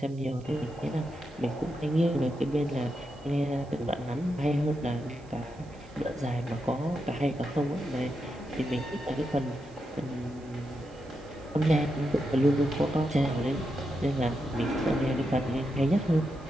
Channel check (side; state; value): right; noise; hiss, 29 dB below the sound